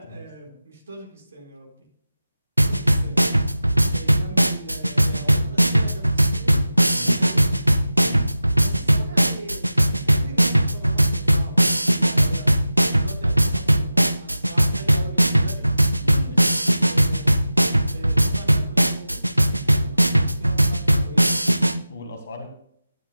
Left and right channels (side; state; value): both; inverted; correlation -0.96